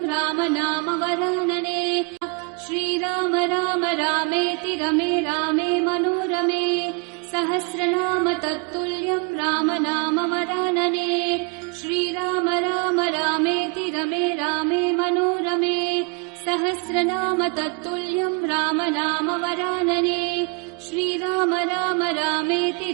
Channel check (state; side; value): quieter; left; 33.2 dB